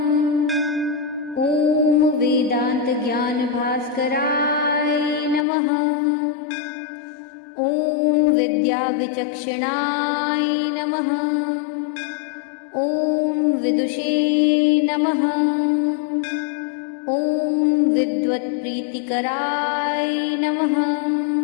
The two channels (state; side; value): drops out; right; at 5.5 s